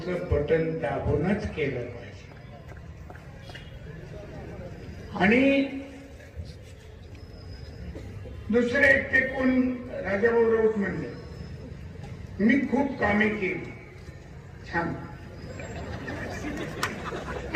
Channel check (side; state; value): both; identical; correlation 1.00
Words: बटन दाबूनच केलं पाहिजे. आणि दुसरे ते कोण राजाभाऊ राऊत म्हणले, मी खूप कामे केली, छान.